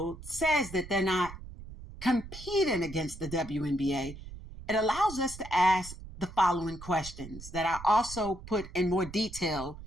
says that they're not competing against the WNBA, it allows us to ask the following questions that I also put in more detail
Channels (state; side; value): noise; right; rumble, 14 dB below the sound